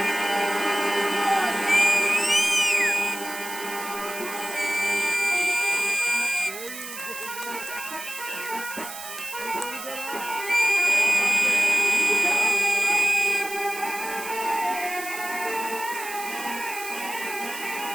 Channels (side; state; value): right; noise; hiss, 10 dB below the sound